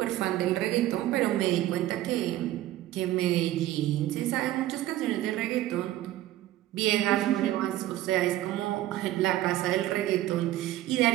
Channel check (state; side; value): quieter; left; 14.5 dB